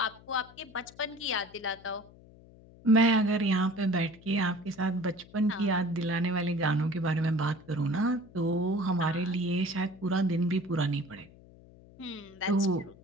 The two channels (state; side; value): noise; left; hum, 23 dB below the sound